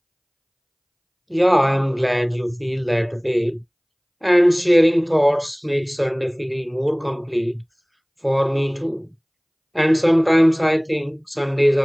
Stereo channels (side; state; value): both; identical; correlation 1.00